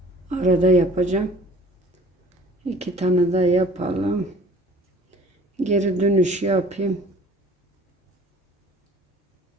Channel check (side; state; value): both; normal; correlation 0.49